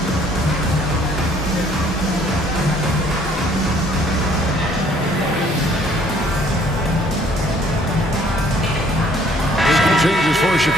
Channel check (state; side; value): normal; both; correlation 0.60